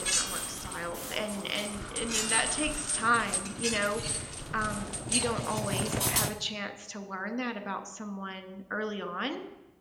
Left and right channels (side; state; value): both; identical; correlation 1.00